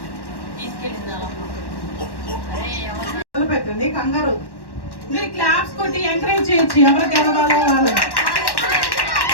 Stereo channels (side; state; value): right; late; 1.1 ms